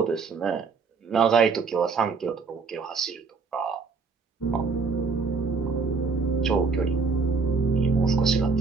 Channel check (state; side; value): quieter; left; 4.7 dB